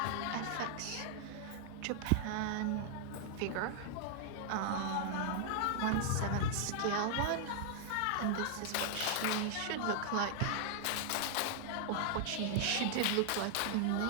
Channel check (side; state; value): both; different; correlation -0.01